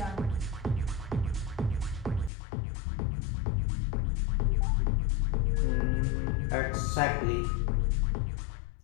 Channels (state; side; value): drops out; right; at 2.3 s